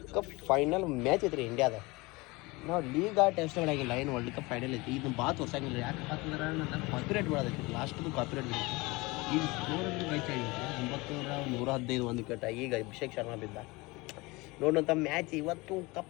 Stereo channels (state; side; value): quieter; right; 23.8 dB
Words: ಕಪ್ ಫೈನಲ್ ಮ್ಯಾಚ್ ಐತ್ರಿ ಇಂಡಿಯಾದ ನಾವು ಲೀಗ್ ಟೆಸ್ಟ್ ಮಾಡಾಗಿಲ್ಲ ಏನು ವರ್ಲ್ಡ್ ಕಪ್ ಫೈನಲ್ ಐತಿ ಇದನ್ನ ಭಾಳ ತೋರ್ಸಂಗಿಲ್ಲ ಯಾಕೆ ಯಾಕಂದ್ರೆ ನನ್ನ ಕಾಪಿರೇಟ್ ಮಾಡೋದೈತಿ ಲಾಸ್ಟ್ದು ಕಾಪಿರೇಟ್ ಈಗ ಸ್ಕೋರ್ ಮ್ಯಾಚ್ ಆಗಿತ್ತು 9,115 ಒಂದು ವಿಕೆಟ್ ಈಗ ಅಭಿಷೇಕ್ ಶರ್ಮಾ ಬಿದ್ದ ನೋಡೋಂಥ ಮ್ಯಾಚ್ ಇವತ್ತು